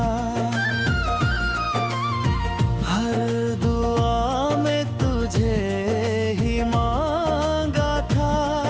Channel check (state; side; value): identical; both; correlation 1.00